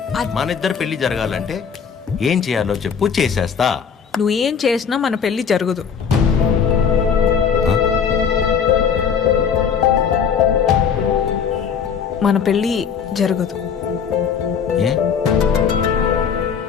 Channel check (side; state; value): right; quieter; 6.8 dB